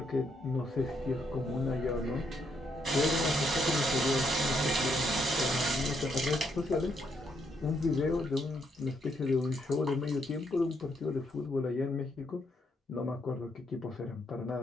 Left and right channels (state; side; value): normal; both; correlation 0.75